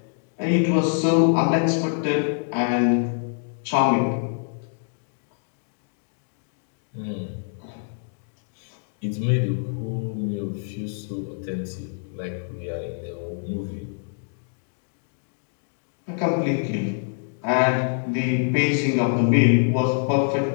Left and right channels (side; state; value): right; silent; digital silence